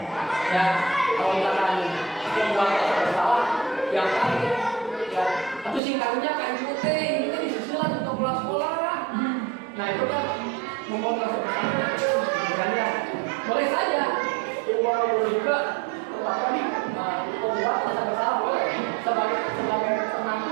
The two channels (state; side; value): drops out; left; at 5.8 s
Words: ya. Kalau misalkan membuat rasa bersalah yang kan ya atau singkatnya kan itu disusulan untuk pulang sekolah. Nah itu kan membuat rasa bersalah kan ya. Boleh saja boleh juga apa nih membuat rasa bersalah boleh sebagai